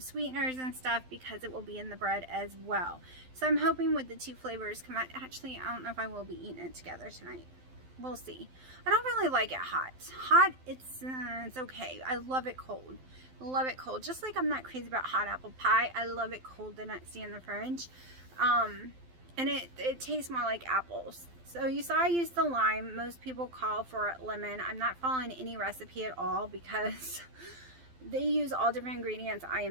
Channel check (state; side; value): late; left; 12 ms